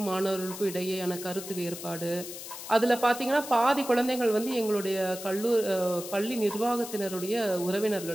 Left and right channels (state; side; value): noise; left; hiss, 11 dB below the sound